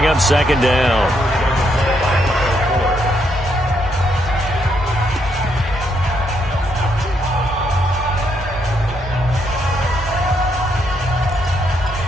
up second down.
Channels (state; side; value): normal; both; correlation 0.76